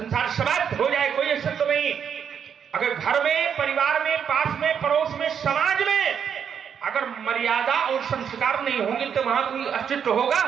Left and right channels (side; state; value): left; quieter; 7.7 dB